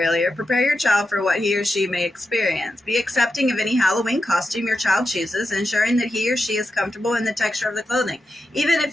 prepare your child for what he or she may experience. Be accepting of any Halloween costume your child chooses, ensuring that he or she is comfortable in the texture of the clothing, even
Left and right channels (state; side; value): normal; both; correlation 0.88